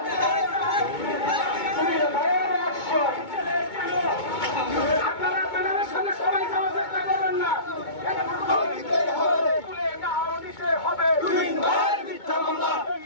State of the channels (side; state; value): right; late; 2.2 ms